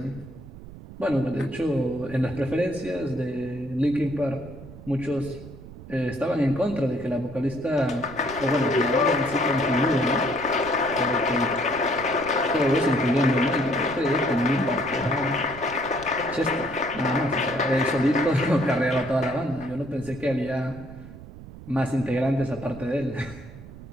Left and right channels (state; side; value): noise; right; rumble, 16 dB below the sound